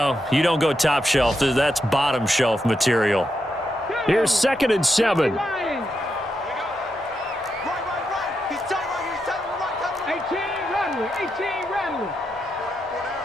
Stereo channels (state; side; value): normal; both; correlation 0.84